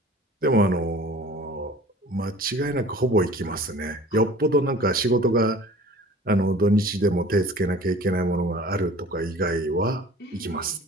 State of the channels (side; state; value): both; normal; correlation 0.45